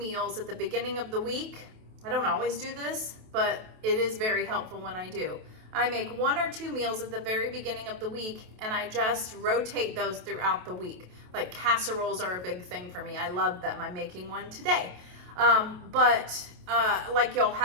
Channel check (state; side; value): late; left; 28 ms